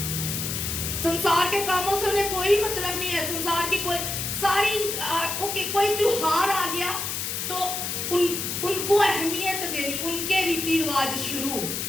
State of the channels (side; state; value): left; noise; hiss, 3 dB below the sound